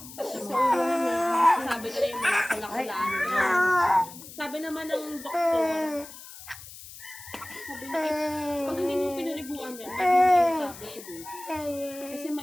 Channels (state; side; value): noise; left; hiss, 16 dB below the sound